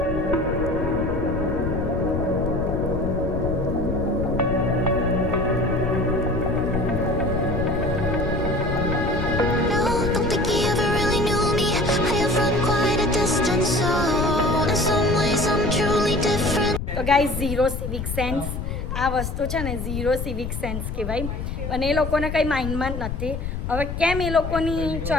તો ગાઈઝ, ઝીરો સિવિક સેન્સ આ વસ્તુ છે ને, ઝીરો સિવિક સેન્સ કહેવાય. અને એ લોકોને કંઈ માઇન્ડમાં જ નથી. હવે કેમ એ લોકોની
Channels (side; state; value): left; noise; rumble, 4 dB below the sound